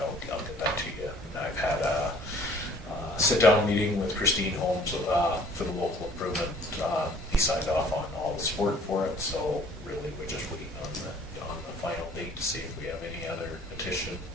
get that to you. And I've had a sit-down meeting with Christine Holmes for the local improvement. He signed off on all the support for it, so really we're just waiting on the final date to see if we have any other petition.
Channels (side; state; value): both; normal; correlation 0.55